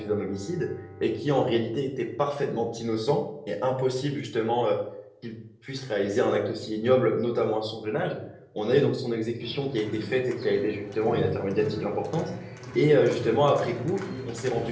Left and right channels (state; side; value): identical; both; correlation 1.00